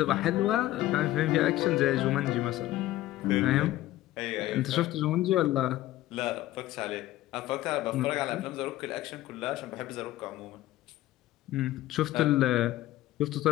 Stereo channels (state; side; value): quieter; right; 15.4 dB